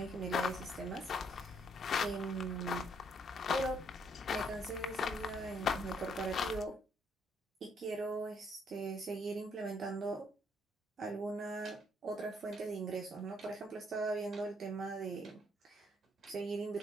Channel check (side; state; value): both; normal; correlation 0.69